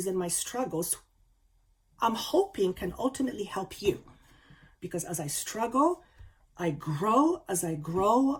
and my struggles, I'm hoping, can ultimately help you. Because as I struggle, I grow. As I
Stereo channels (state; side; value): identical; both; correlation 1.00